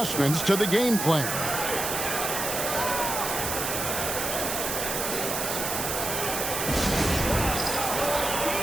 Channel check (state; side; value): noise; right; hiss, 2 dB below the sound